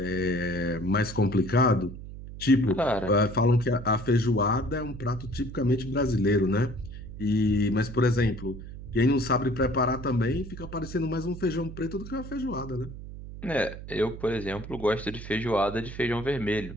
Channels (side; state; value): right; noise; hum, 12 dB below the sound